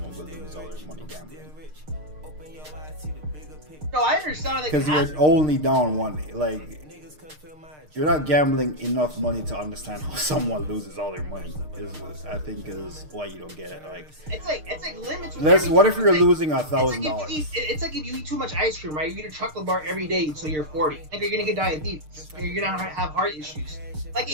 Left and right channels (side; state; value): left; late; 6.6 ms